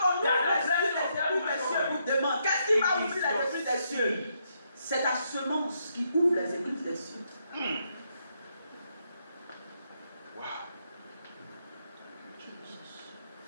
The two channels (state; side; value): inverted; both; correlation -0.77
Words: on ouvre les cieux vous demande, qu'est-ce qui va ouvrir les églises des cieux? C'est ta semence qui ouvre les églises des cieux. Wow.